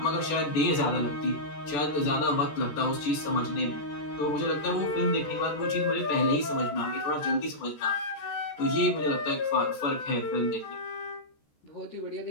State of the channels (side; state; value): right; late; 14 ms